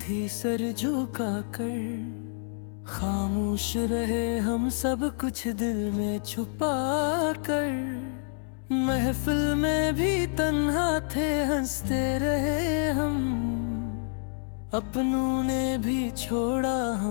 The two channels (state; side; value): silent; right; 59 dB below the other